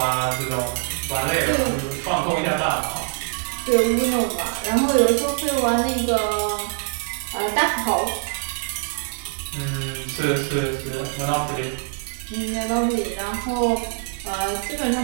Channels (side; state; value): left; quieter; 33.9 dB